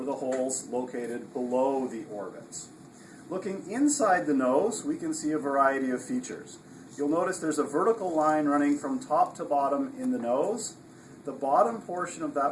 the holes located below the orbits. Looking inside the nose, we can see a variety of features. You'll notice there's a vertical line running from top to bottom in the nose. The bottom portion of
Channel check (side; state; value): both; identical; correlation 1.00